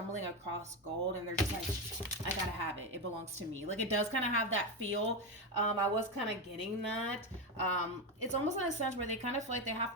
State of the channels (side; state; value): both; normal; correlation 0.12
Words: across gold and they're just like, I gotta have it, it belongs to me. Like it does kind of have that feel. I was kind of getting that. It's almost in a sense where they kind of feel like they have